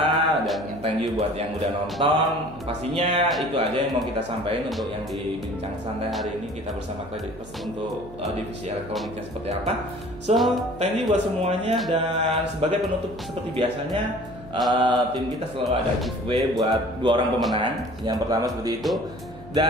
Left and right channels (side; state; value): right; noise; hum, 20 dB below the sound